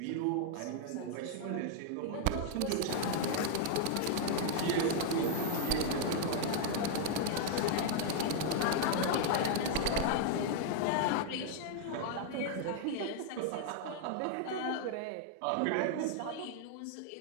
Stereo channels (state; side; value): different; both; correlation 0.00